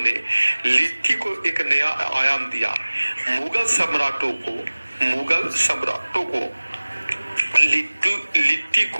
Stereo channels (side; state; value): both; inverted; correlation -1.00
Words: लिट्टी को एक नया आयाम दिया। मुगल सम्राटों को लिट्टी